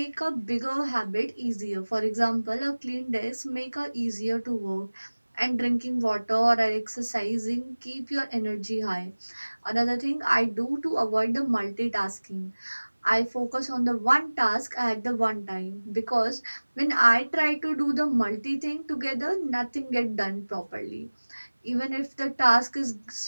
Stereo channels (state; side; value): inverted; both; correlation -1.00